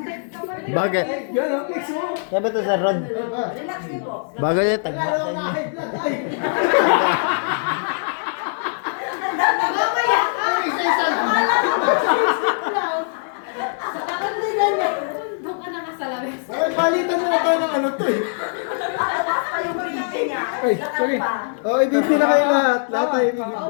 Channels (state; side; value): silent; right; digital silence